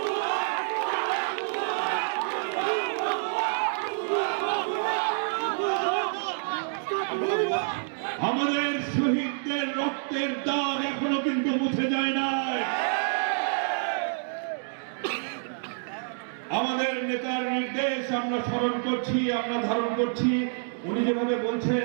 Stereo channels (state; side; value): silent; left; digital silence